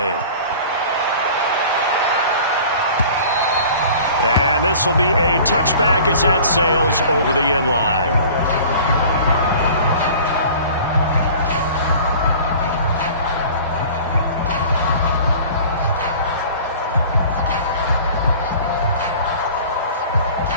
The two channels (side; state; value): both; inverted; correlation -0.44